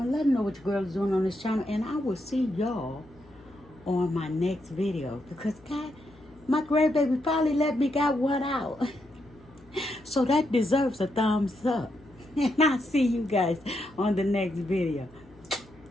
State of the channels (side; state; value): left; noise; hum, 26 dB below the sound